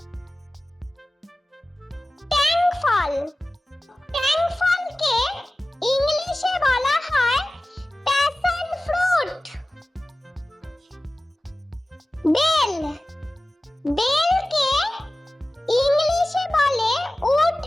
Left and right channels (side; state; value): both; normal; correlation 0.96